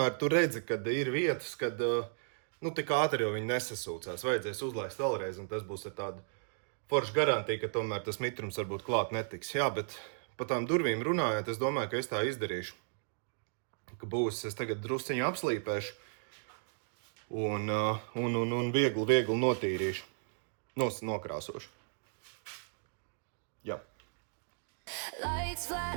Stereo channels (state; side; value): silent; left; digital silence